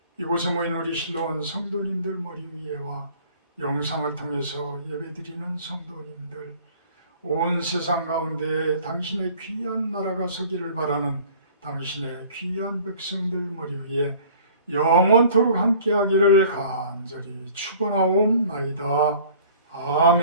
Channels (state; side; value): inverted; both; correlation -0.50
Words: 이곳에 모인 우리 실로원 성도님들 머리 위에와 영상을 통해서 예배드리는 성도님들, 온 세상 가운데 당신의 귀한 나라가 서기를 바라는 당신의 귀한 백성들 머리 위에 영원토록 함께하기를 간절히 축원하옵나이다.